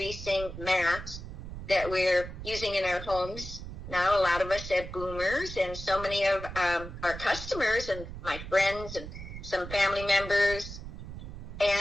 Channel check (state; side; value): noise; right; rumble, 10 dB below the sound